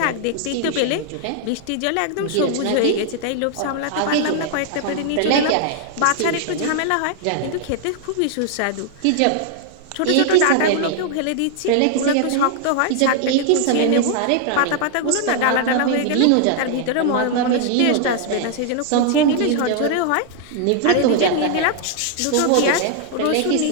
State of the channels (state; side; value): different; both; correlation 0.00